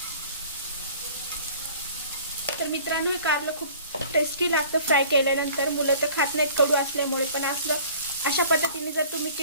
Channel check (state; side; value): inverted; both; correlation -0.48